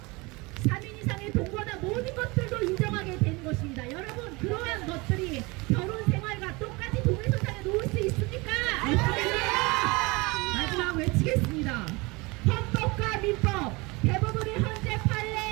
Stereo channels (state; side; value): quieter; left; 25.1 dB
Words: 3인 이상의 동거나 모든 것들도 인정하게 되는 것입니다. 여러분 그러한 것들이 결혼 생활과 똑같이 동일선상에 놓을 수 있습니까? 마지막 외치겠습니다. 헌법과 민법, 대법원의 현재